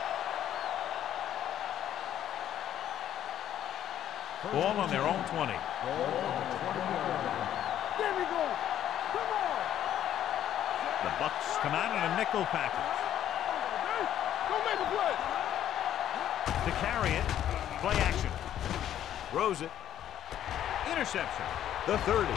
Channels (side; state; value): right; quieter; 11.1 dB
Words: Ball on their own 20. There we go. Come on. The Bucs come out in a nickel package. Don't make a play. To carry it, play action. Throws it. Interception. The 30.